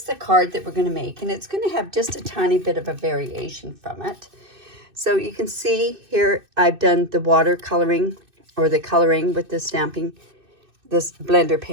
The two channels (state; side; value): late; left; 2.6 ms